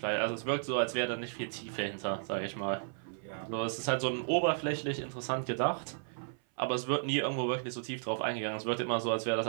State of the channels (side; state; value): left; silent; 55 dB below the other